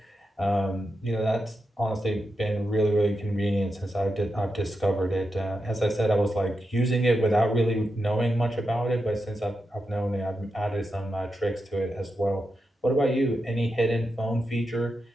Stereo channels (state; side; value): normal; both; correlation 0.87